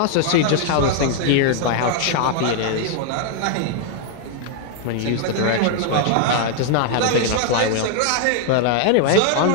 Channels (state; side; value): different; both; correlation 0.00